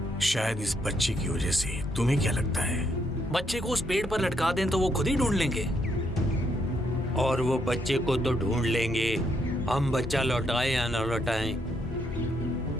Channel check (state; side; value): normal; both; correlation 0.75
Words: शायद इस बच्चे की वजह से। तुम्हें क्या लगता है? बच्चे को उस पेड़ पर लटका दें तो वो खुद ही ढूंढ लेंगे। और वो बच्चे को तो ढूंढ लेंगे, हम बच्चा लौटाए या न लौटाएं,